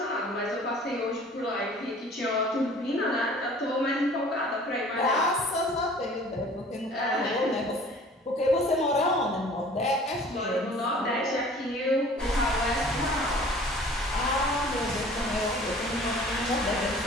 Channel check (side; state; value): both; normal; correlation 0.49